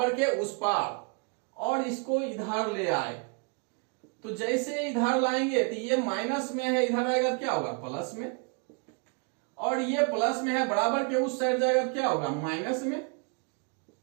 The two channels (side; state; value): left; quieter; 36.9 dB